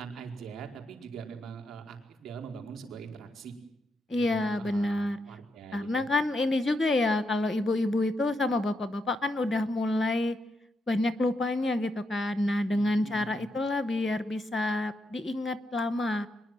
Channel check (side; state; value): both; normal; correlation 0.82